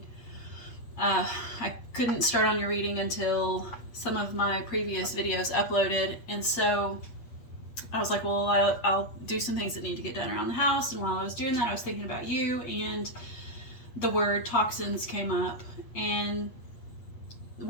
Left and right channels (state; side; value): late; right; 8.4 ms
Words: I couldn't start on your reading until some of my previous videos uploaded, and so I was like, well, I'll do some things that need to get done around the house. And while I was doing that, I was thinking about you, and the word toxins came up. And